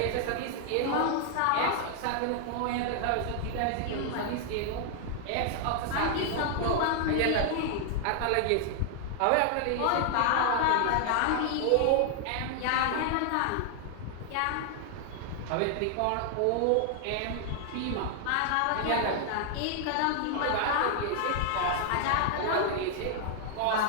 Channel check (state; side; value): different; both; correlation 0.00